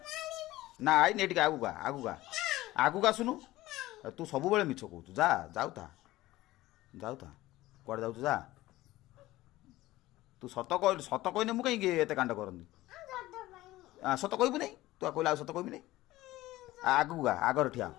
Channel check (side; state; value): right; quieter; 17.2 dB